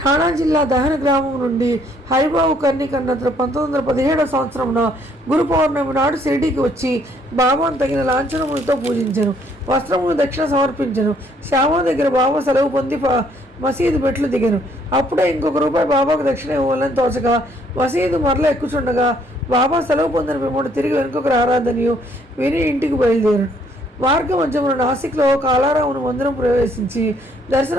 ఠాణా జిల్లా దహన గ్రామం నుండి హరిబాబు కర్ణిక్ అన్నతను 1917 సంవత్సరంలో గురు పౌర్ణమి నాడు షిరిడీకి వచ్చి బాబాను తగిన లాంఛనములతో పూజించాను. వస్త్రములు దక్షిణ సమర్పించను. శ్యామ దగ్గర బాబా సెలవు పొంది మసీదు మెట్లు దిగాను. అప్పుడే ₹1 బాబాకు దక్షిణ ఇవ్వాలని తోచగా మసీదు మరల ఎక్కుచుండగా బాబా సెలవు పొందిన పిమ్మట తిరిగి వెనుకకు రారాదనియు విని ఇంటికి బయలుదేరాను. మార్గ మధ్యమున నాసిక్లో కాలారామును మందిరం ప్రవేశించి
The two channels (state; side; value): normal; both; correlation 0.66